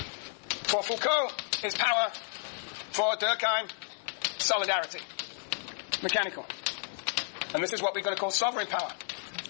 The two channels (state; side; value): silent; right; 57 dB below the other